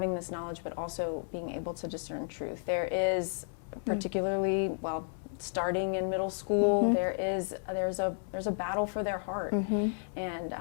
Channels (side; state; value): right; silent; digital silence